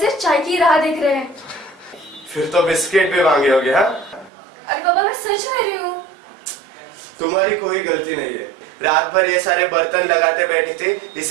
चाय की राह देख रहे हैं। फिर तो बिस्किट भी मांगे होगे। हाँ, अरे बाबा, मैं सच कह रही हूँ। तुम्हारी कोई गलती नहीं है। रात भर ये सारे बर्तन लगाते बैठी थी,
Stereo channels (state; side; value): drops out; left; at 4.3 s